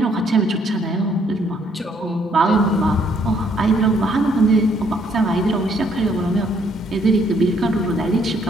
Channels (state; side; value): normal; both; correlation 0.67